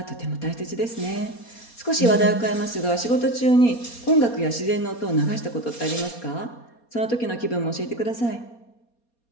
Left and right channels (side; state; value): right; late; 4.2 ms